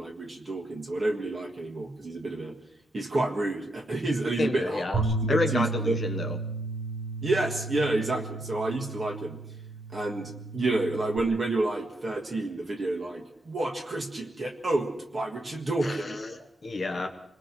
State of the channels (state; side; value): normal; both; correlation 0.79